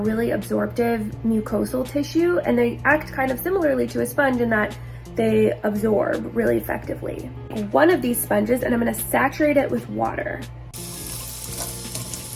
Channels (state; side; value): identical; both; correlation 1.00